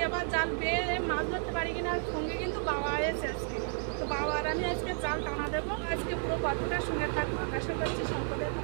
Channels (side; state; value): left; silent; 56 dB below the other